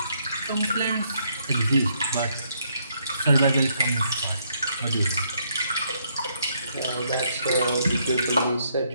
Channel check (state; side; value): inverted; both; correlation -0.72